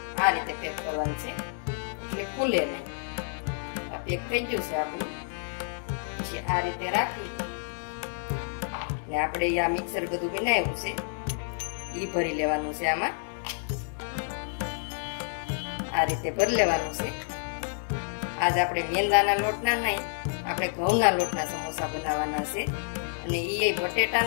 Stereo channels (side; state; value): right; silent; 59 dB below the other